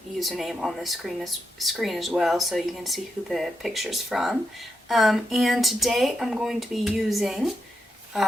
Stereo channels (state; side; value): normal; both; correlation 0.85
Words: username on the screen as well, so you can see who the picture's from. And today I'm going to be using